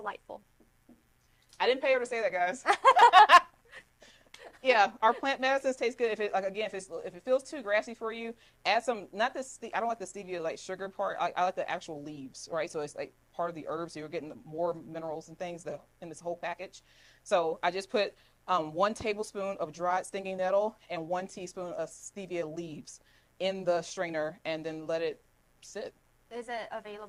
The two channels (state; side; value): identical; both; correlation 1.00